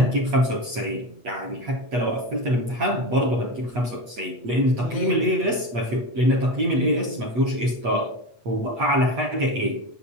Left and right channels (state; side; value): late; left; 8.3 ms